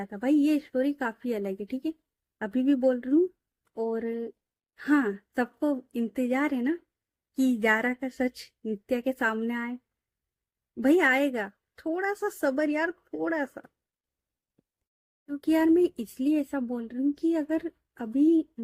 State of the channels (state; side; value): identical; both; correlation 1.00